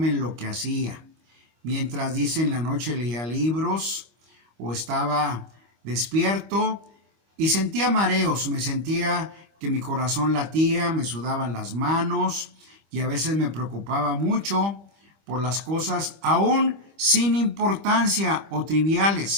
en lo que hacía. Mientras, dice, en la noche leía libros o estaba despierto y sentía mareos, me sentía que mi corazón latía, me sudaban las manos y a veces me preocupaba mucho por las cosas aún sin importancia o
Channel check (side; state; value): left; late; 25 ms